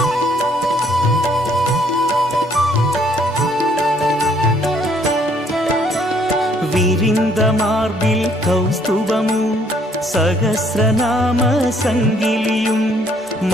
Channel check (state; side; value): normal; both; correlation 0.65